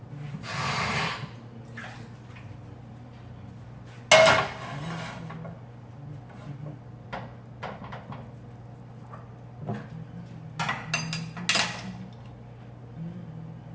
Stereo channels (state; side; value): identical; both; correlation 1.00